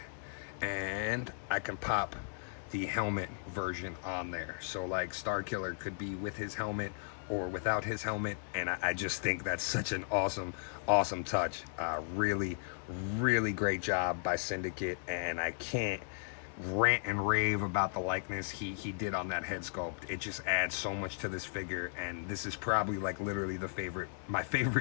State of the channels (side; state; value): right; silent; digital silence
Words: and I can pop the helmet version on there. So like Starkiller could be with his helmet or without his helmet, and I just think that's such an awesome touch. Really great job by Syndicate, and I can't rant and rave about the likeness he did on that head sculpt. It just adds so much to this figure, and this is probably like literally my